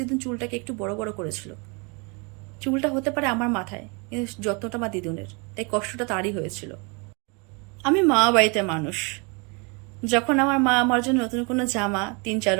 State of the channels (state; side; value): quieter; left; 31.8 dB